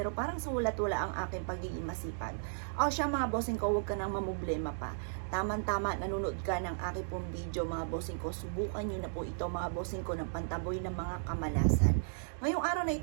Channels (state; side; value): silent; left; digital silence